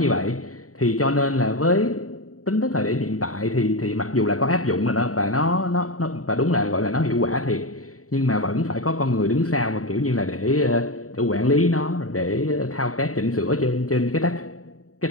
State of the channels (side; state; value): right; late; 0.65 ms